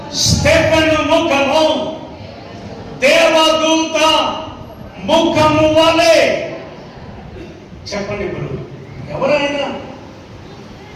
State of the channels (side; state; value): both; identical; correlation 1.00